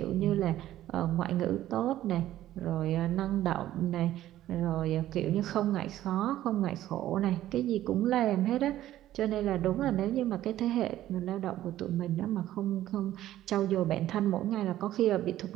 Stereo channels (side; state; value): left; quieter; 13.5 dB